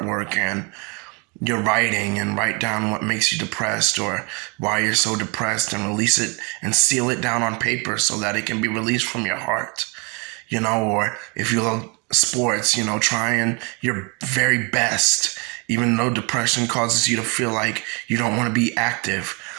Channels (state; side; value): quieter; left; 31.8 dB